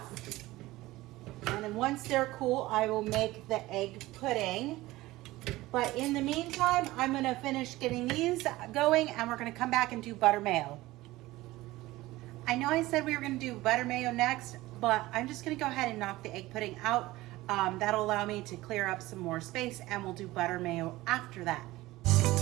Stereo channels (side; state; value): left; quieter; 18.3 dB